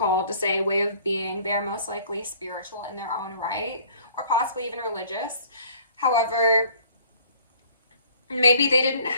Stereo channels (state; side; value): inverted; both; correlation -0.55